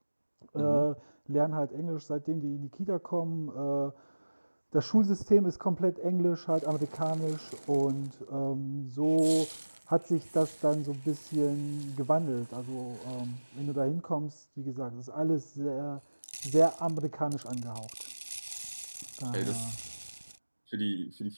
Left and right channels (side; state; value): both; inverted; correlation -1.00